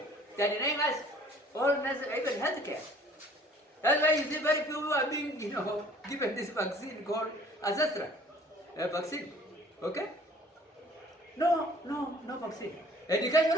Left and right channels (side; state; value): both; normal; correlation 0.54